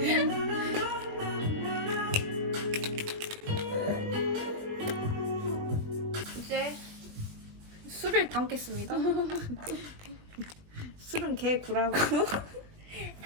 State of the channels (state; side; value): late; left; 20 ms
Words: 이제 술을 담겠습니다. 술은 개구라고.